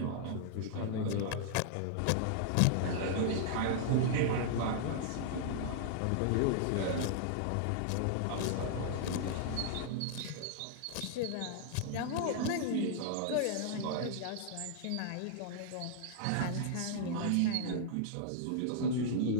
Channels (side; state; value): both; different; correlation -0.01